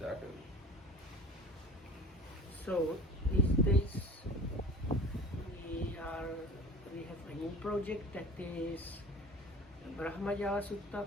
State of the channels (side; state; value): both; normal; correlation 0.39